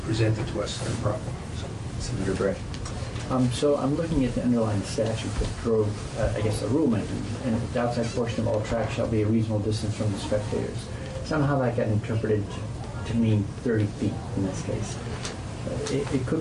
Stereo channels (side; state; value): both; identical; correlation 1.00